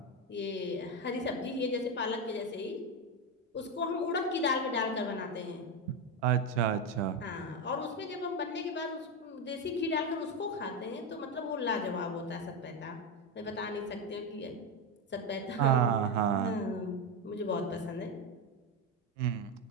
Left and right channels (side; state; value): both; normal; correlation 0.11